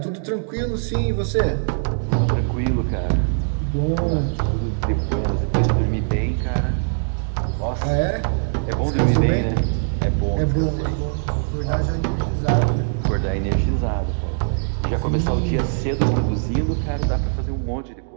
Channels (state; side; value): silent; left; digital silence